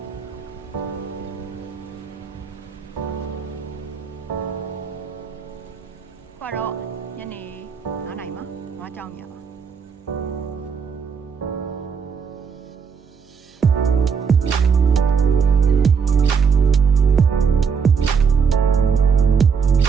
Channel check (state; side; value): quieter; left; 6.1 dB